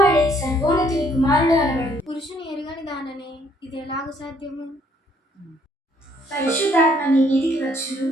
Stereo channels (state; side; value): normal; both; correlation 0.65